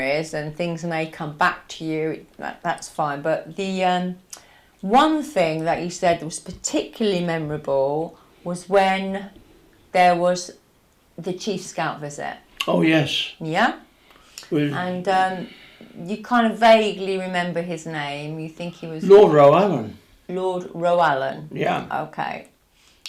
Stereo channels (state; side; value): identical; both; correlation 1.00